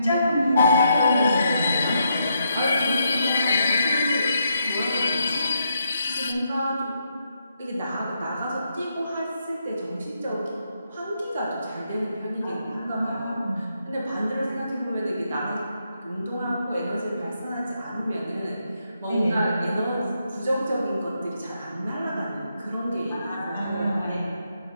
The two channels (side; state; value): both; inverted; correlation -0.79